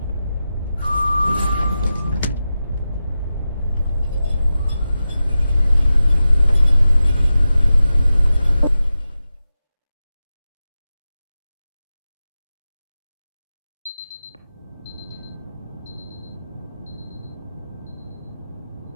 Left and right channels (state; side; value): inverted; both; correlation -0.92